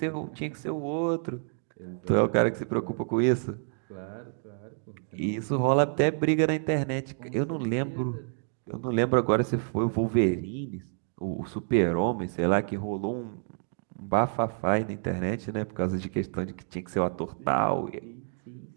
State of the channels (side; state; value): left; silent; 59 dB below the other